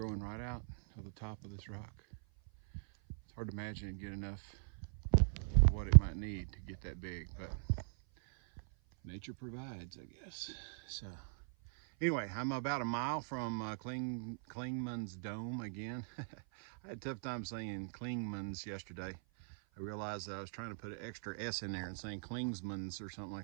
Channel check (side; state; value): left; silent; 51 dB below the other